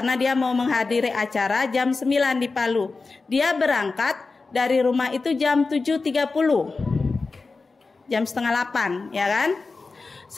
dia mau menghadiri acara jam 9 di Palu. Dia berangkat dari rumah itu jam 7.30. Jam setengah 8, ya kan?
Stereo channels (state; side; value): quieter; right; 4.0 dB